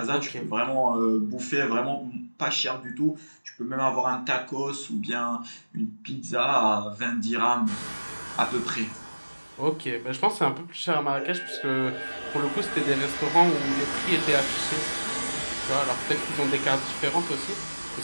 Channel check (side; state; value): both; inverted; correlation -1.00